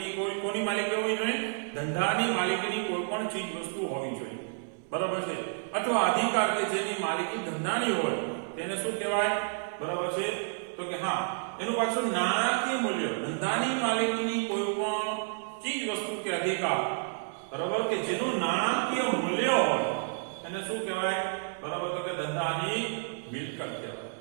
કોની માલિકી હોવી જોઈએ? ધંધાની માલિકીની કોઈ પણ ચીજ વસ્તુ હોવી જોઈએ. બરાબર છે? અથવા અધિકાર કે જેની માલિકી ધંધાની હોય તેને શું કહેવાય? બરાબર છે? તો કે હા, એનું પાછું નાણાકીય મૂલ્ય. ધંધાની માલિકીની કોઈ પણ ચીજ વસ્તુ કે અધિકાર બરાબર કે જેનું નાણાકીય મૂલ્ય હોય એને શું કહેવાય? બરાબર, તો કે ધંધાની મિલકત કહેવાય.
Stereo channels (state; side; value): silent; left; 58 dB below the other